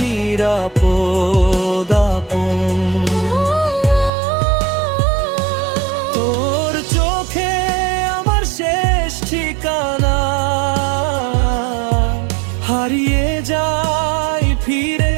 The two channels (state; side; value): drops out; left; at 4.1 s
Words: নিরাপদ আপন। তোর চোখে আমার শেষ ঠিকানা, হারিয়ে যাই ফিরে